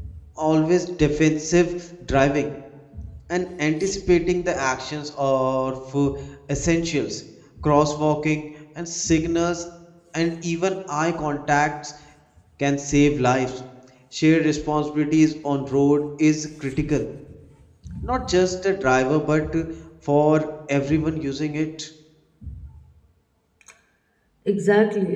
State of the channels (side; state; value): both; identical; correlation 1.00